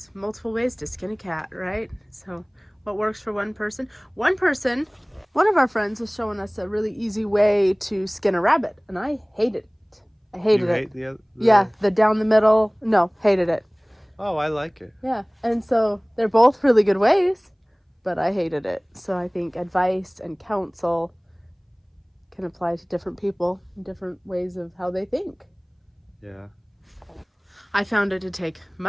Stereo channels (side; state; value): both; identical; correlation 1.00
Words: multiple ways to skin a cat, right? So what works for one person? One of our friends was showing us a really easy way to skin a rabbit, and I hated it. I hated it. You hate Yeah, the down the middle. No, hated it. Oh, I like it. Yeah, and so they're both really good ways, but I hated it. So I think advice and counsel can apply to different people, different ways of how they think. Yeah. I found it to take